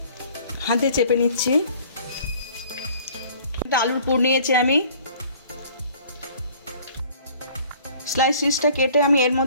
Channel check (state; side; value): inverted; both; correlation -0.53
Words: হাতে চেপে নিচ্ছি। একটা আলুর পুর নিয়েছি আমি, স্লাইস পিসটা কেটে আমি এর